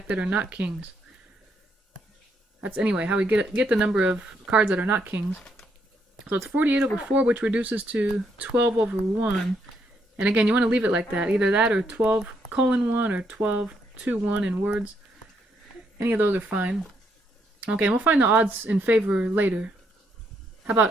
that are not kings. That's anyway how we get the number of cards that are not kings. So it's 48 over 4, which reduces to 12 over 1. And again, you want to leave it like that. Either that or 12:1 or 12:2:1 in words. Any of those are fine. Okay, and we'll find the odds in favor later. How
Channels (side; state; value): both; normal; correlation 0.75